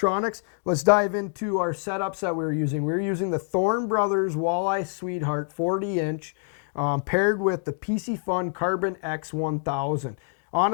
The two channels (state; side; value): silent; right; 61 dB below the other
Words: Let's dive into our setups that we were using. We were using the Thorne Brothers Walleye Sweetheart 40-inch paired with the PC Fun Carbon X 1000.